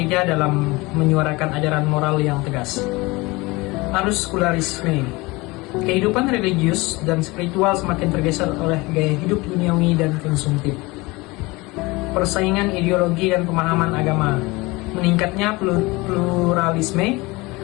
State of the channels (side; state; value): right; quieter; 23.2 dB